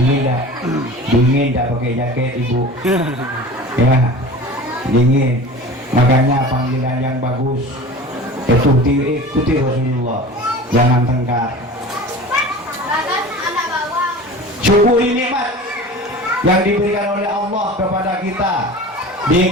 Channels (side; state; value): both; normal; correlation 0.38